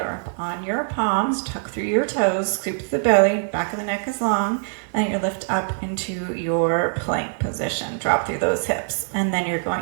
on your palms, tuck through your toes, scoop to the belly, back of the neck is long, and you lift up into your plank position. Drop through those hips, and then you're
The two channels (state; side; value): silent; left; 63 dB below the other